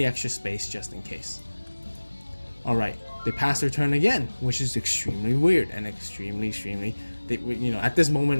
extra space just in case. All right, they pass their turn again, which is extremely weird and extremely you know, at this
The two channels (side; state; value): both; inverted; correlation -1.00